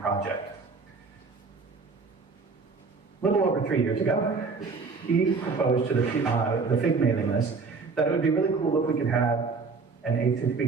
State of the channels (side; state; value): left; quieter; 4.5 dB